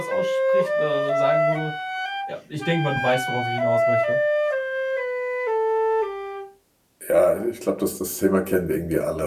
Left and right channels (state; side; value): identical; both; correlation 1.00